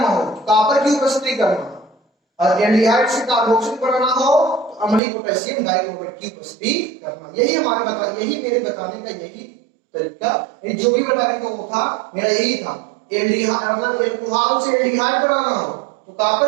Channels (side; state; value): left; drops out; at 5.0 s